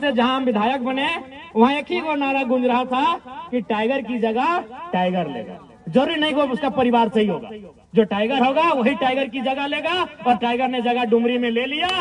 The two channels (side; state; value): both; identical; correlation 1.00